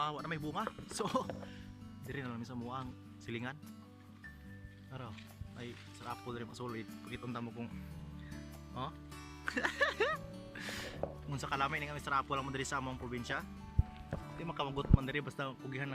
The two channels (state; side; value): identical; both; correlation 1.00